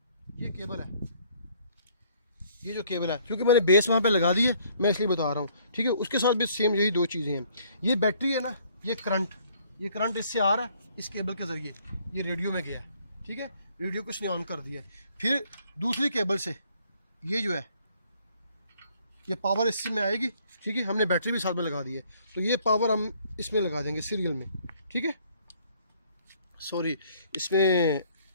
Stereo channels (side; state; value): both; inverted; correlation -0.62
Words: ये केबल है, ये जो केबल है, क्योंकि मैंने बेस वहाँ पे लगा दी है, मैं इसलिए बता रहा हूँ, ठीक है। उसके साथ भी सेम यही 2 चीज़ें हैं। ये बैटरी है ना, ये करंट इससे आ रहा है, इस केबल के ज़रिए ये रेडियो में गया है, ठीक है। रेडियो को इसने ऑन कर दिया है। फिर दूसरी केबल से ये जो है, ये पावर इससे में आएगी, ठीक है। हमने बैटरी भी साथ में लगा दी है, तो ये पावर हम इसमें लगा देंगे सीरियल में, ठीक है। सॉरी, इसमें